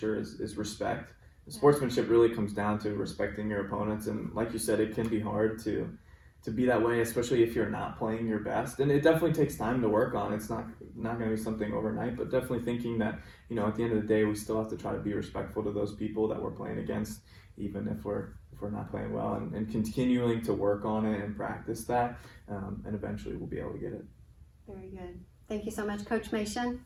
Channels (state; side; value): identical; both; correlation 1.00